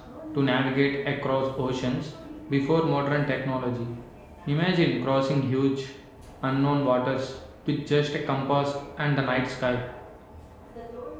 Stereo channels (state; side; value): identical; both; correlation 1.00